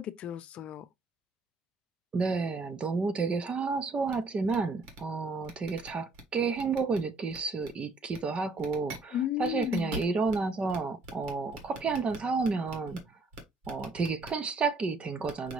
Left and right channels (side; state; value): left; quieter; 3.2 dB